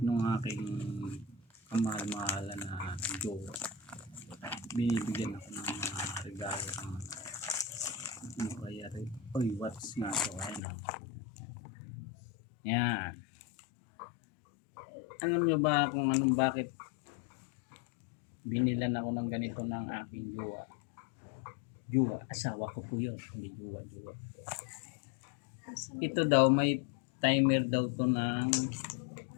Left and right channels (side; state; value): right; drops out; at 10.6 s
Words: ng aking kamahal-mahalan na jowa. Binibigyan ako ng mga regalo ng ano kaya rin. Uy, watch na ito. Ayan. Yan. Alam nyo ba kung anong bakit binilan ako ng ganito ng aking jowa? Jowa, asawa ko po yun. Hindi jowa. Ito daw, may timer daw to ng